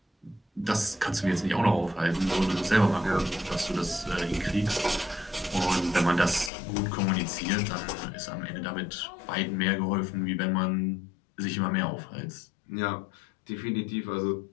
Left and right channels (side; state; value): right; drops out; at 6.5 s